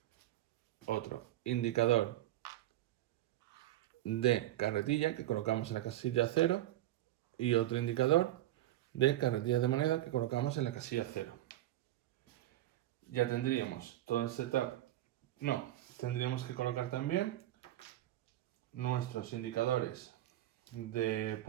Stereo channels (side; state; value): left; quieter; 14.4 dB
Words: otro indicador de carretilla que colocamos en la casilla 0 y otro indicador de carretillas de moneda que colocamos en la casilla 0. Ya tendríamos todo el setup. No, tendríamos que colocar también nuestros indicadores de